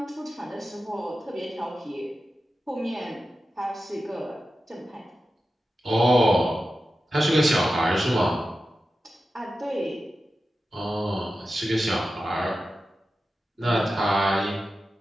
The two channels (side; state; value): both; normal; correlation 0.92